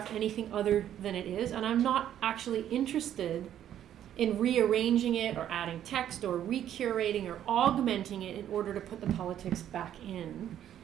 anything other than it is, and I'm not actually interested in rearranging it or adding text or recurating or augmenting it in order to put the politics back in.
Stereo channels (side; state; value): left; quieter; 10.8 dB